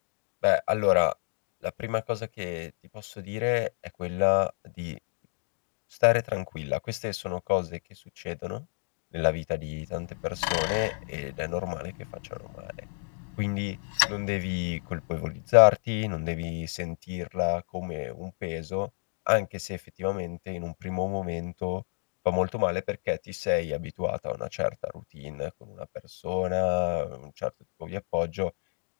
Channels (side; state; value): right; silent; 58 dB below the other